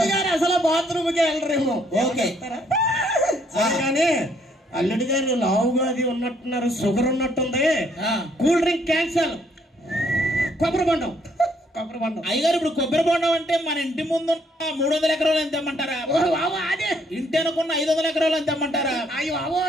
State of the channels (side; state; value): both; normal; correlation 0.68